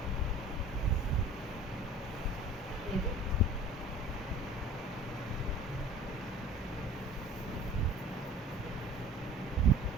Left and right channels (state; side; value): normal; both; correlation 0.45